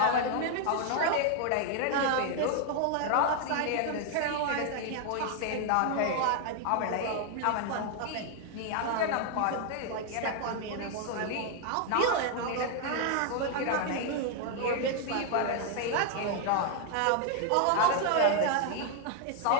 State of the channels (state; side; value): different; both; correlation 0.00